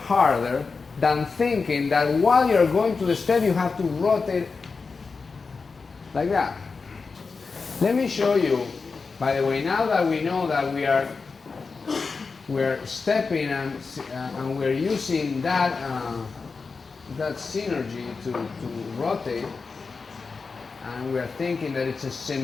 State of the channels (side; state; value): right; quieter; 4.6 dB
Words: than thinking that while you're going to the step, you have to rotate like that. Let me show you, by the way, now that we know that we're stepping and we're using that synergy to rotate, and we're thinking that it's a